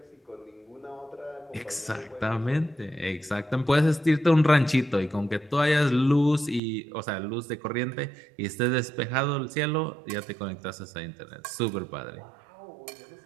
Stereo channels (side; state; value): left; drops out; at 6.6 s